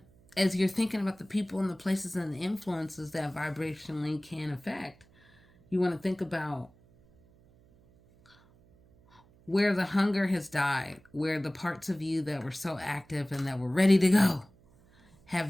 as you're thinking about the people and the places and the influences that vibrationally can affect, you want to think about where the hunger has died, where the parts of you that were so active and that were ready to go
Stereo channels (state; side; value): noise; right; hum, 29 dB below the sound